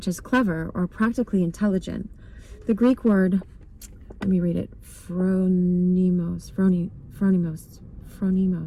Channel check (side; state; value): both; identical; correlation 1.00